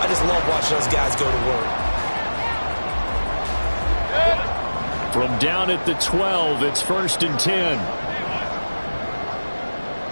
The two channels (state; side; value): inverted; both; correlation -1.00